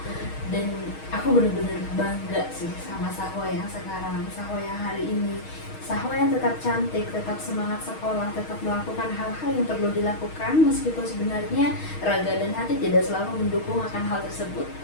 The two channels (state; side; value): late; right; 6.4 ms